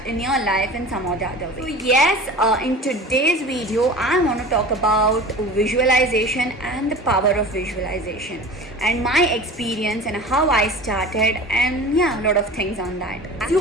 in your life in some or the other way. So yes, in today's video I want to talk about visualization and the power of visualization and my experience and how I started, and yeah, a lot of things on that. As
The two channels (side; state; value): both; normal; correlation 0.37